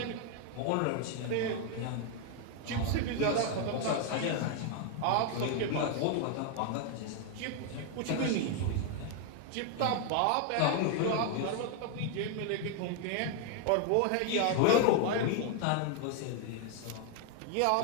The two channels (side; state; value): both; different; correlation 0.00